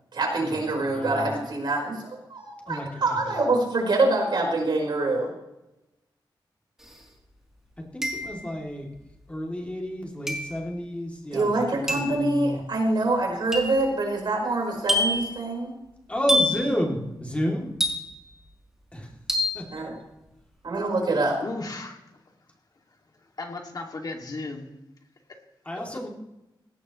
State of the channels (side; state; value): both; normal; correlation 0.68